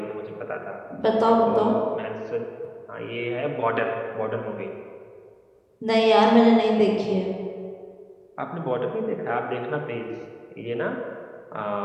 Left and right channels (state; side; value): identical; both; correlation 1.00